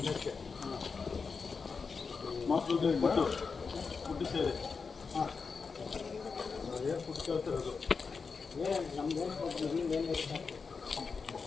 ಮಕ್ಕಳು ಫುಡ್ಡು ಸೇರಿ ಹಾಂ ಏನು ಫುಡ್ ಕೇಳ್ತಿರೋದು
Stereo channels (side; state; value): right; quieter; 5.1 dB